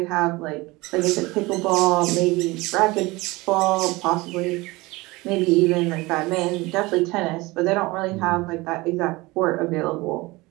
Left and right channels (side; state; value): left; quieter; 22.0 dB